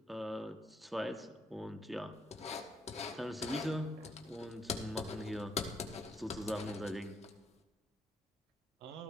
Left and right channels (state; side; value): normal; both; correlation 0.73